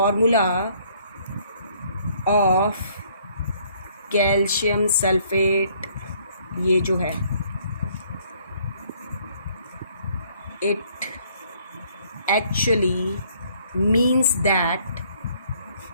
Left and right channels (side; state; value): both; inverted; correlation -0.63